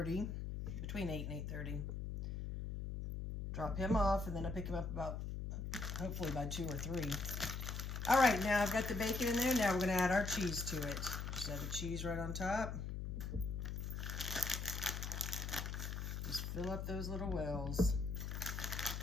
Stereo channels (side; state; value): left; noise; hum, 4 dB below the sound